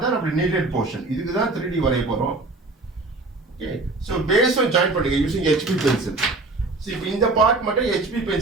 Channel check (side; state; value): left; quieter; 3.3 dB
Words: தான் நம்ம needed portion. இதுக்கு தான் 3D வரைய போறோம். Okay. So, base on join பண்ணுங்க using HB pencil. So, இப்போ இந்த part மட்டும் HB